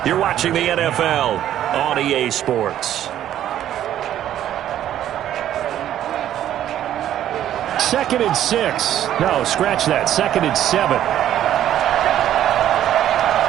You're watching the NFL on EA Sports. 2nd and 6. No, scratch that. 2nd and 7.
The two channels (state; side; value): quieter; left; 11.6 dB